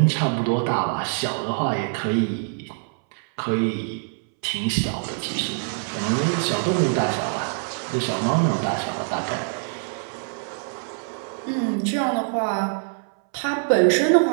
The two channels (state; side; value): silent; left; 63 dB below the other